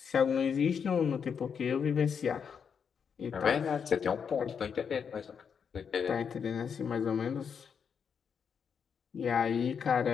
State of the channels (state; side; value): quieter; right; 6.8 dB